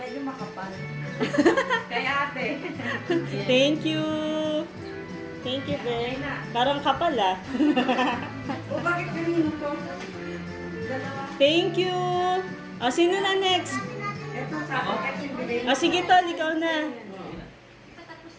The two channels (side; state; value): both; identical; correlation 1.00